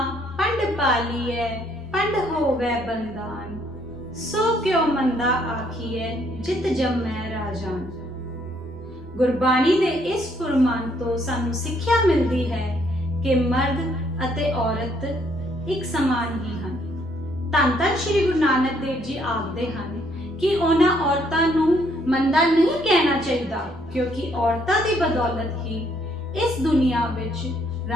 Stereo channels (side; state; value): both; normal; correlation 0.68